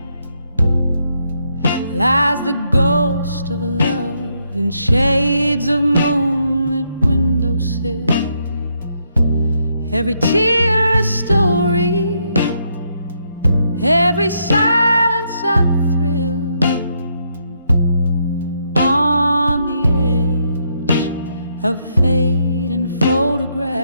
lies the ghost of a love in shades of moonlit windowsill. Every tear a story, every silence a thrill. On the edge of fading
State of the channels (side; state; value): both; inverted; correlation -0.76